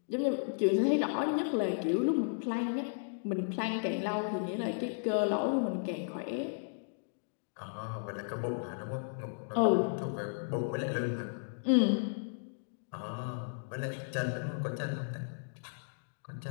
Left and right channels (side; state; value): right; silent; digital silence